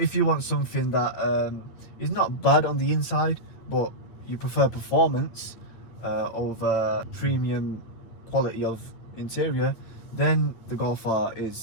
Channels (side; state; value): right; late; 9.0 ms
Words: you want something that is not bad on the inside, but you prefer performance over premium quality of interior, then the Golf R